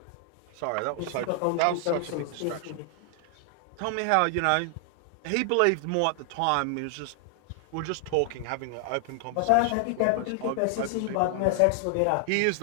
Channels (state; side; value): different; both; correlation 0.00